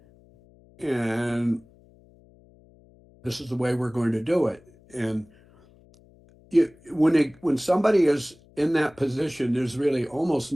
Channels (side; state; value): left; noise; hum, 28 dB below the sound